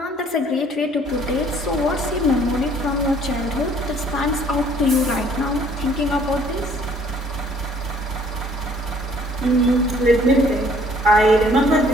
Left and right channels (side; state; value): both; normal; correlation 0.58